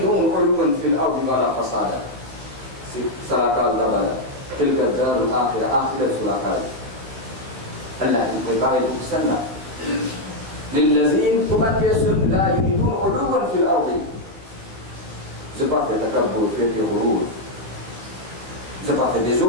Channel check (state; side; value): late; left; 15 ms